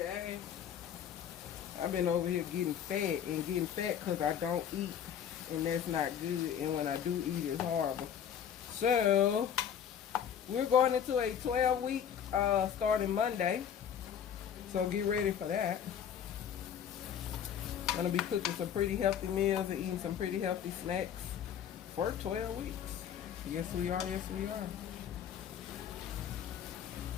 I've been over here getting fat because I don't eat, and that's not good. And when I do eat, it's horrible. So we're going into a 12-week starting Monday. So get ready for that. Gonna be cooking some pretty healthy meals and eating some pretty healthy snacks for 12 weeks. Yes, we are. Yes, we are.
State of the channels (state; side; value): quieter; right; 8.7 dB